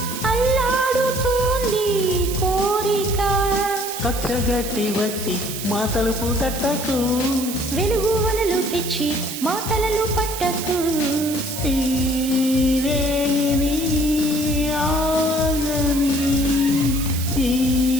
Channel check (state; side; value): noise; right; hiss, 8 dB below the sound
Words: అల్లాడుతోంది కోరిక. కచ్చగట్టి వచ్చి మా తలుపు తట్టకు, వెలుగు వలలు తెచ్చి మా తలలు పట్టకు. ఈ రేయిని ఆగని, ఈ